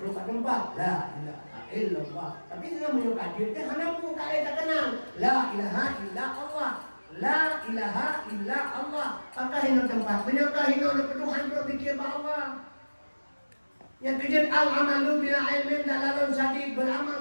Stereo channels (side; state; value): both; inverted; correlation -1.00